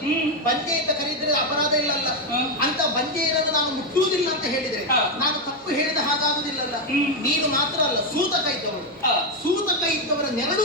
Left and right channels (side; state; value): both; normal; correlation 0.05